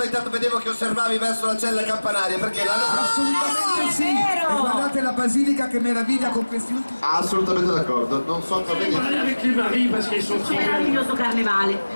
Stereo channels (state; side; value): inverted; both; correlation -1.00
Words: Intanto vedevo che osservavi verso la cella campanaria, perché l'hanno Assolutamente sì! E guardate la basilica che meraviglia con questi ultimi... assolutamente d'accordo, non so cosa dire. Meraviglioso carnevale,